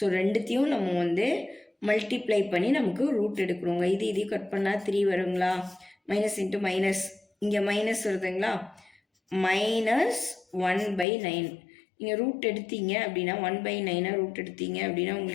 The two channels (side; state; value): right; drops out; at 11.1 s